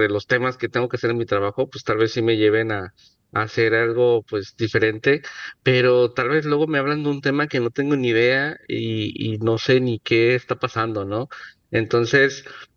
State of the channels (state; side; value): identical; both; correlation 1.00